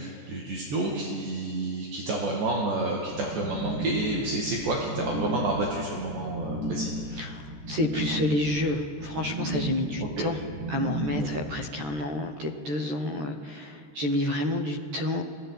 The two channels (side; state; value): left; late; 13 ms